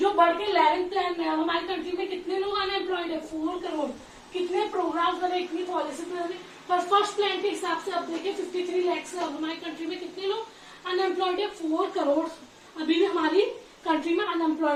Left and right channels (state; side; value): identical; both; correlation 1.00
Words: बढ़ के 11th प्लान में अब हमारी कंट्री में कितने लोग अनएम्प्लॉयड है, 4 करोड़। कितने प्रोग्राम बने, इतनी पॉलिसी बने, पर फर्स्ट प्लान के हिसाब से अब देखिए 53 लाख से अब हमारी कंट्री में कितने लोग अनएम्प्लॉयड है, 4 करोड़ अभी भी हमारी कंट्री में